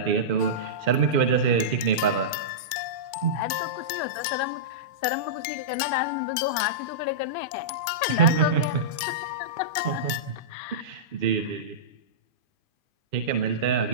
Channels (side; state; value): left; late; 2.4 ms